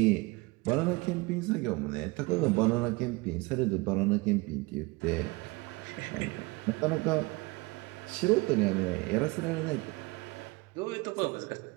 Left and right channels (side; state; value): left; quieter; 24.7 dB